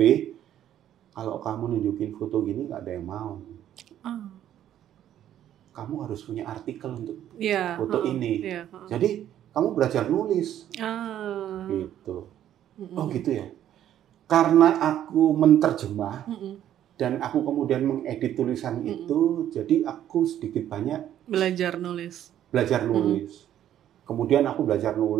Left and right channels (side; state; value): left; quieter; 11.3 dB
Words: kalau kamu nunjukin foto gini nggak ada yang mau. Kamu harus punya artikel untuk foto ini. Jadi kamu belajar nulis. Gitu. Oh gitu ya. Karena aku menterjemah, dan aku kemudian mengedit tulisan itu, jadi aku sedikit banyak belajar nulis. Kemudian aku belajar